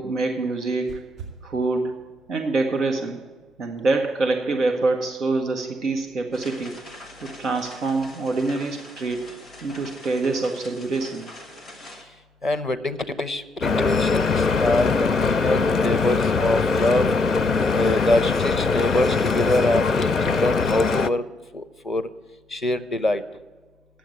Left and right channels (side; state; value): both; normal; correlation 0.75